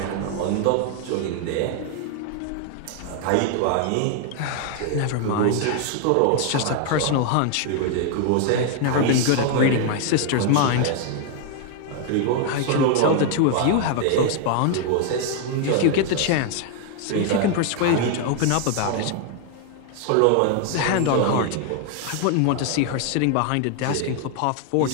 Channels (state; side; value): different; both; correlation 0.00